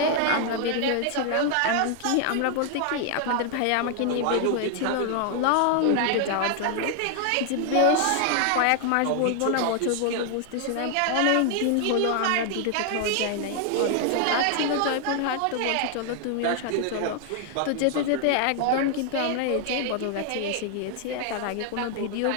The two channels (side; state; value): both; different; correlation 0.00